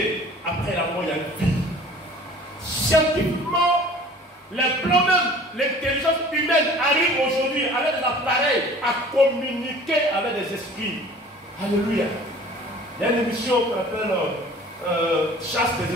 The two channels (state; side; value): normal; both; correlation 0.47